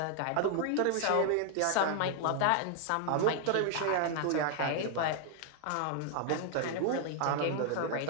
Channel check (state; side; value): different; both; correlation 0.00